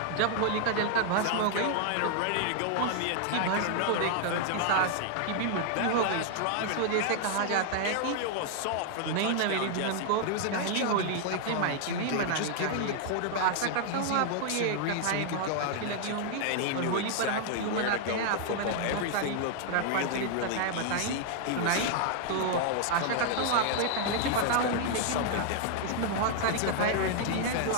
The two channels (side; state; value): both; different; correlation 0.00